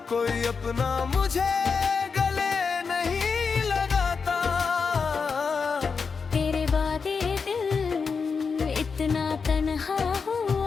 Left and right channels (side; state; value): right; quieter; 5.3 dB